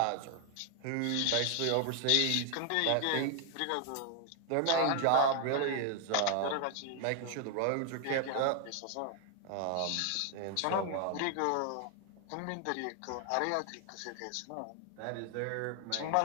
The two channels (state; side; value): different; both; correlation 0.00